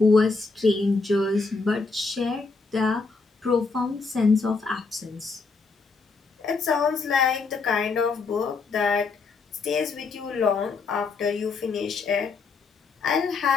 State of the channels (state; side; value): quieter; right; 4.3 dB